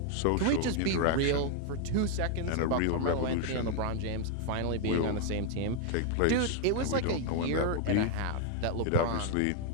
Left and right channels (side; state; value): both; different; correlation 0.00